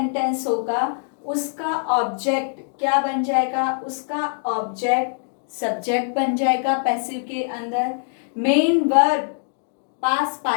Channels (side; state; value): right; silent; digital silence